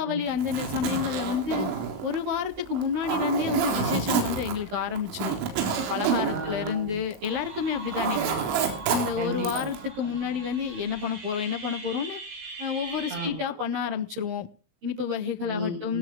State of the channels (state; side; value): late; left; 15 ms